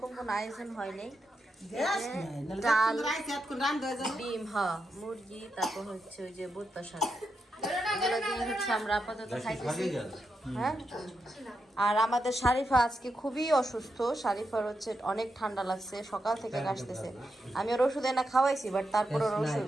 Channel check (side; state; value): both; normal; correlation 0.85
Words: কোনো আয়োজন হয়নি ডাল ডিম মুরগি তারপর হচ্ছে ওই যে বুট্টা শাক এগুলো দিয়ে হচ্ছে আমরা আপাতত খাইতেছি হ্যাঁ আর আমাদের শারিফা আজকে খুবই অসুস্থ শারিফার হচ্ছে অনেক ঠান্ডা লাগছে সকাল থেকে কাশতেছে আমি ওর ওষুধ এনে খাওয়াইছি বাট তারপর ওর ওষুধ